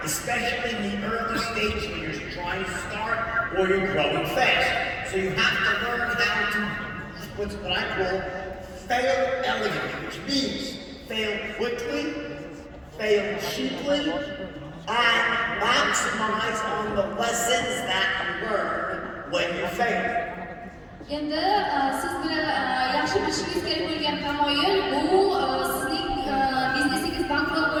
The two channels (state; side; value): identical; both; correlation 1.00